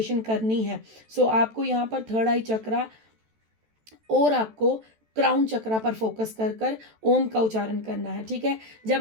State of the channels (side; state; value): left; late; 14 ms